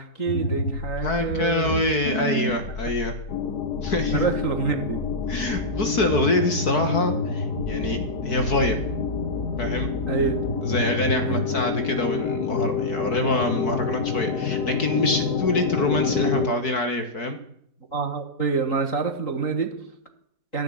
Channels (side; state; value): right; late; 4.6 ms